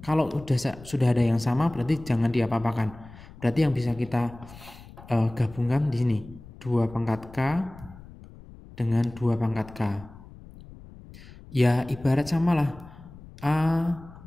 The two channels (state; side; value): noise; left; rumble, 19 dB below the sound